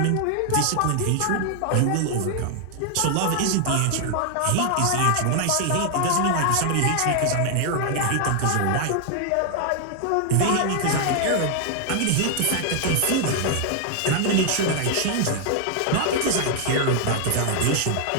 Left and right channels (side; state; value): both; different; correlation 0.00